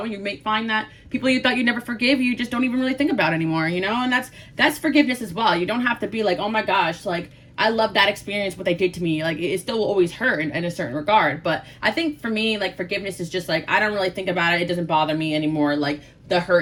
you may find that people you thought you'd never forgive, you just don't even really think about anymore, you know? And that's forgiveness as well. You don't have to be like, oh my gosh, like, I love that experience, what they did to me. Like, it still will always hurt in a certain regard. But I think for me, like, forgiveness is just like, I don't really think about it. It doesn't bother me anymore. Like, the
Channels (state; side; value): identical; both; correlation 1.00